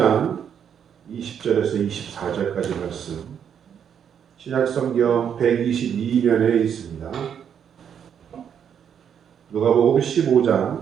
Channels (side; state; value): left; quieter; 8.2 dB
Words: 20절에서 24절까지 말씀, 신약성경 122면에 있습니다. 누가복음